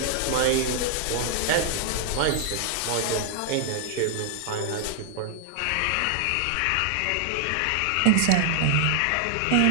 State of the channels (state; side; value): different; both; correlation 0.00